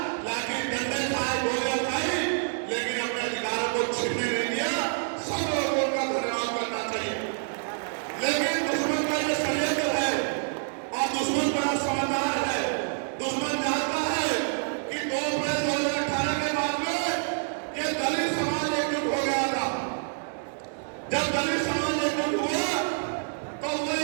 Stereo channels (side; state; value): left; silent; digital silence